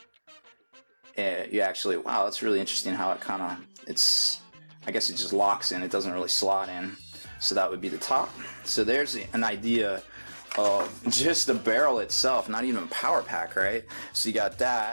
And you actually, wow, that's really interesting how it kind of, I guess it just locks in. It doesn't really slot in. So that would be the top. So there's an idea of just the barrel itself, not even power pack, right? So you got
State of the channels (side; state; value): both; inverted; correlation -1.00